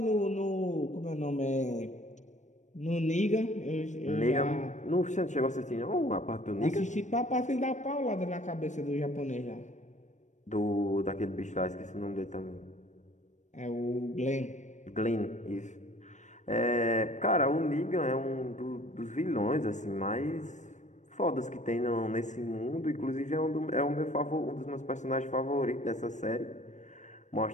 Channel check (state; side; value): late; right; 0.35 ms